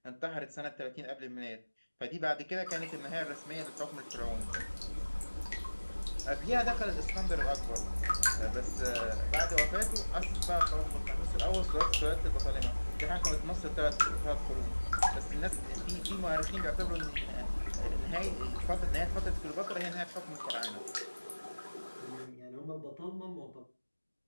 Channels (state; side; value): inverted; both; correlation -1.00